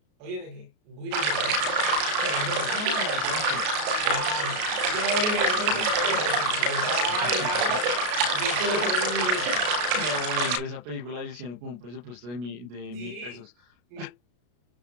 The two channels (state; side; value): late; left; 33 ms